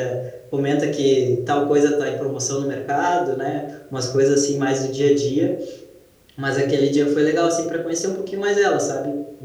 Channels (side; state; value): both; identical; correlation 1.00